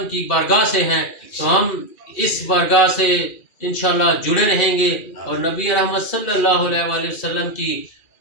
کی بارگاہ سے ہیں، تو ہم اس بارگاہ سے انشاءاللہ جڑے رہیں گے، اور نبی رحمت صلی اللہ علیہ وآلہ وسلم کی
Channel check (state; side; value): late; right; 2.4 ms